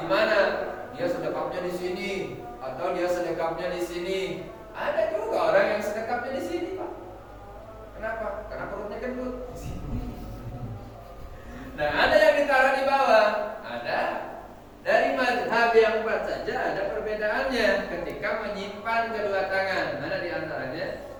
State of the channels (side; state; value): both; identical; correlation 1.00